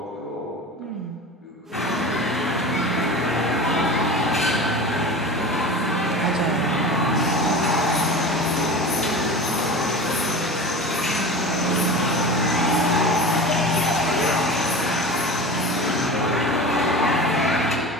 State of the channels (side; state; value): both; normal; correlation 0.33